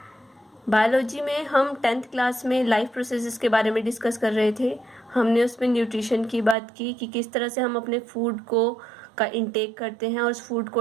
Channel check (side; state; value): left; drops out; at 6.6 s